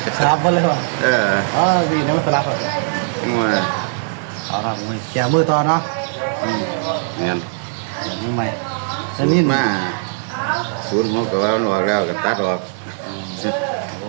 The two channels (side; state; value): left; silent; digital silence